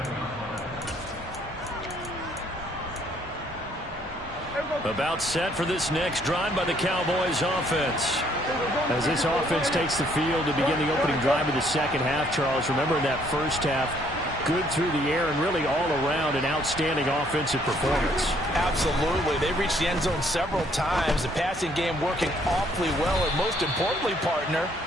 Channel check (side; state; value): both; normal; correlation 0.65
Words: About set for this next drive by the Cowboys offense. As this offense takes the field to begin the opening drive of the second half, Charles, remember in that first half, good through the air and really all around an outstanding offensive performance. Absolutely. They reached the end zone several times. The passing game working awfully well, and most importantly, partner,